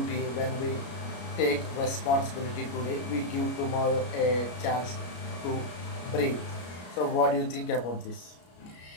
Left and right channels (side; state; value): right; late; 33 ms